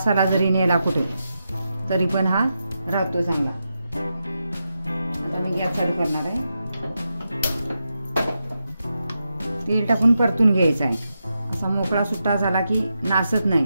जरी नेला कुठे, तरी पण हा राहतो चांगला. आता मी गॅस चालू करणार आहे. तेल टाकून परतून घ्यायचं आहे. असा मोकळा सुट्टा झाला की नासत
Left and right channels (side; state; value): both; inverted; correlation -0.87